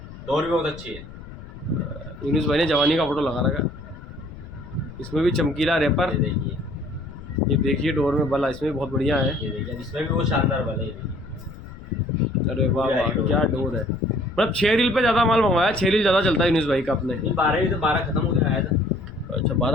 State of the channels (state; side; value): noise; left; rumble, 15 dB below the sound